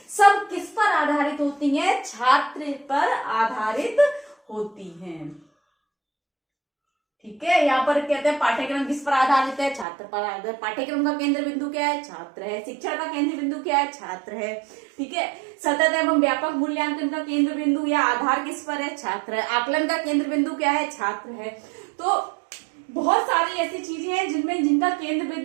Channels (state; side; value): drops out; left; at 9.9 s